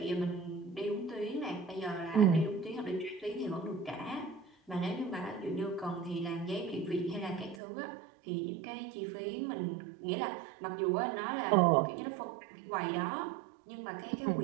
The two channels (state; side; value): drops out; left; at 7.6 s